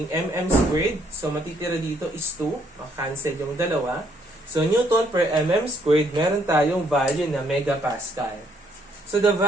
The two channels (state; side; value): normal; both; correlation 0.69